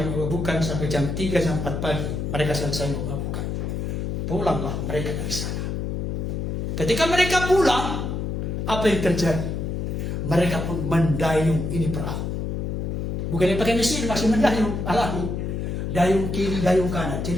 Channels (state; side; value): noise; left; hum, 2 dB below the sound